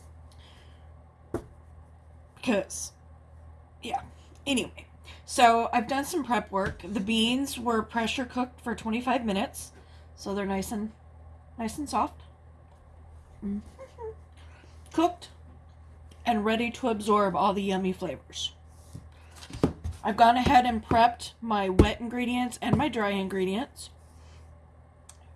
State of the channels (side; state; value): both; identical; correlation 1.00